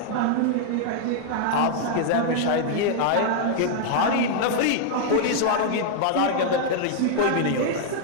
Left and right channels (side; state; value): both; different; correlation 0.00